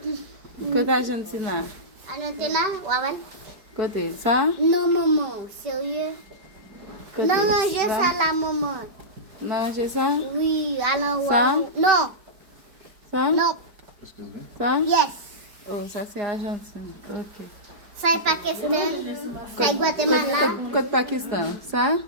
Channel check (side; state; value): left; late; 5.2 ms